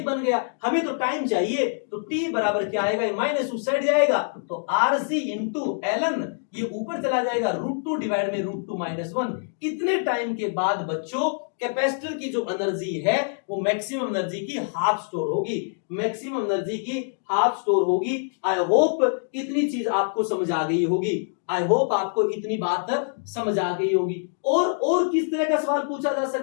बन गया। हमें तो टाइम चाहिए, तो टी बराबर क्या आएगा, माइनस उस साइड जाएगा, तो आरसी इंटू एलन, ये ऊपर चला जाएगा, √2 डिवाइड में √2 - 1। इतने टाइम के बाद बच्चों कैपेसिटर की जो एनर्जी है वो मैक्सिमम एनर्जी की हाफ स्टोर होगी, मैक्सिमम एनर्जी की हाफ स्टोर होगी। आई होप इतनी चीज आपको समझ आ गई होगी, आई होप आपको इतनी बात समझ आ गई होगी। और किस तरह का सवाल पूछा जा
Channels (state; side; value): silent; right; digital silence